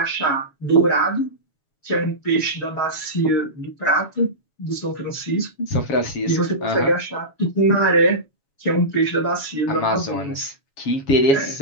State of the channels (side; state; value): right; late; 7.1 ms